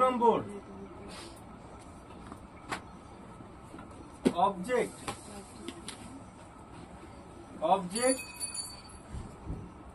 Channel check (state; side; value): identical; both; correlation 1.00